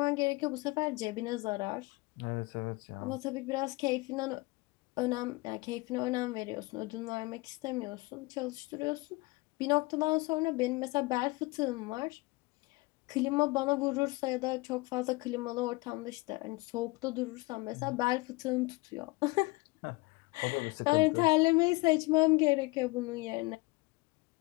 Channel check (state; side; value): quieter; right; 23.9 dB